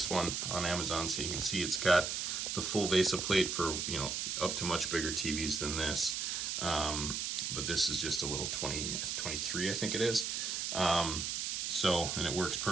one on Amazon. So you can see it's got the full VESA plate for, up to much bigger TVs than this. But this is just a little 23, I think it is. And it works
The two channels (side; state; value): right; noise; hiss, 2 dB below the sound